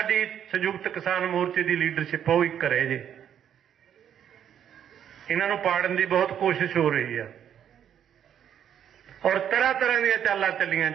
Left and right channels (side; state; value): left; quieter; 9.4 dB